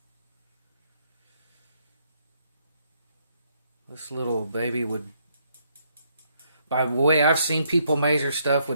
baby would, by the way I've seen people measure stuff,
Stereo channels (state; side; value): inverted; both; correlation -0.72